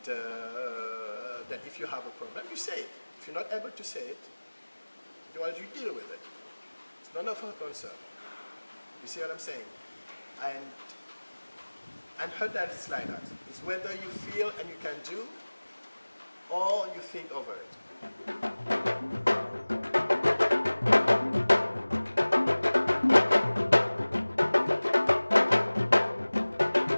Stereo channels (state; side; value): inverted; both; correlation -1.00